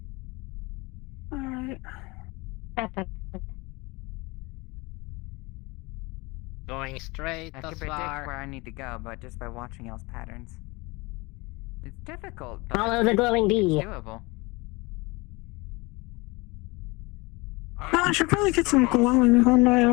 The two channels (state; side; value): quieter; right; 24.8 dB